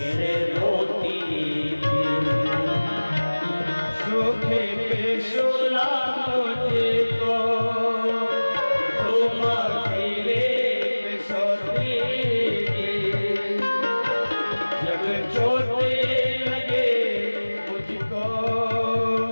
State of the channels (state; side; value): inverted; both; correlation -1.00